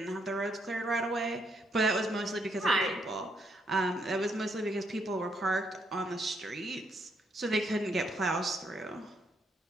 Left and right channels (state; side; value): normal; both; correlation 0.75